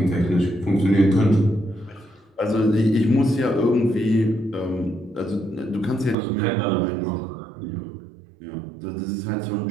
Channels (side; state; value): left; drops out; at 6.2 s